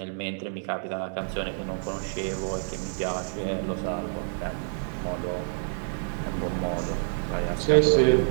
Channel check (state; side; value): silent; left; 59 dB below the other